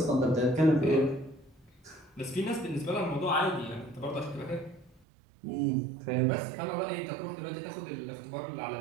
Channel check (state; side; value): drops out; left; at 5.0 s